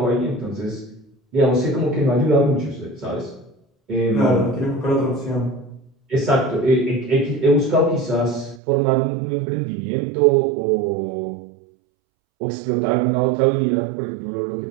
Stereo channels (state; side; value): drops out; left; at 8.6 s